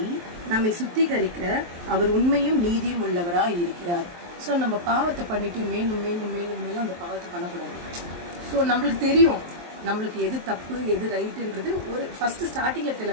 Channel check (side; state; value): left; late; 23 ms